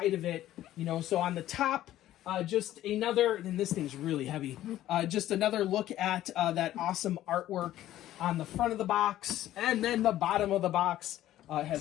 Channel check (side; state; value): right; quieter; 13.5 dB